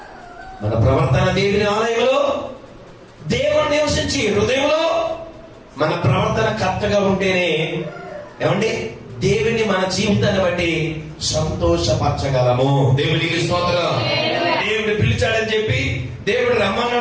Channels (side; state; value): both; identical; correlation 1.00